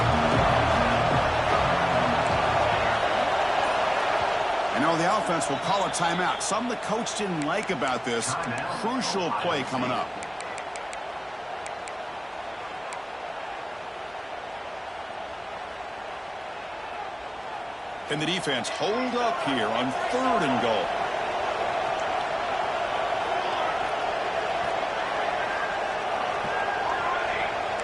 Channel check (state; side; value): identical; both; correlation 1.00